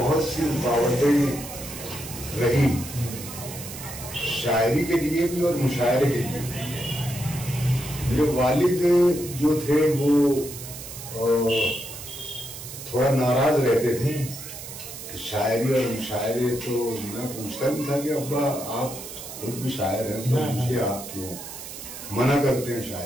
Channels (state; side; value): noise; right; hiss, 11 dB below the sound